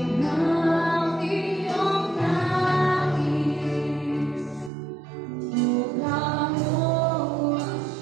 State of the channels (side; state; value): left; drops out; at 4.7 s